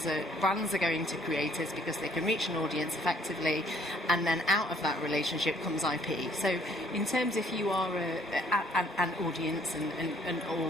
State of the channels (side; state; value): both; normal; correlation 0.61